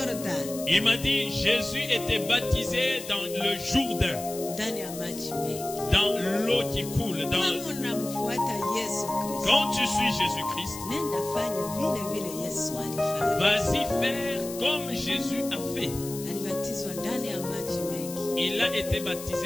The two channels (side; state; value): left; noise; hiss, 12 dB below the sound